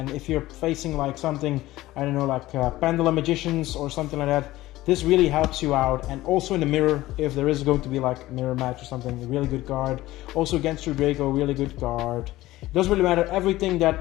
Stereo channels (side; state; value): right; quieter; 16.9 dB